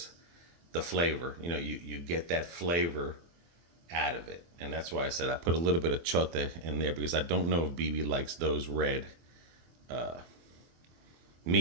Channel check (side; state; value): left; late; 24 ms